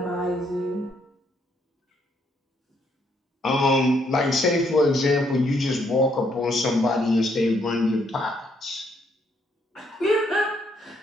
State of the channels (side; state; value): both; normal; correlation 0.72